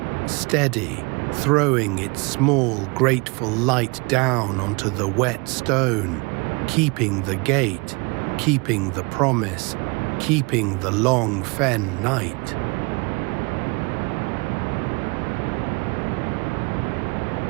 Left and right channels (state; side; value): quieter; left; 28.6 dB